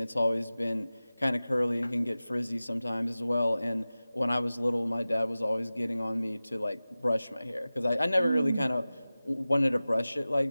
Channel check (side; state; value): both; inverted; correlation -0.97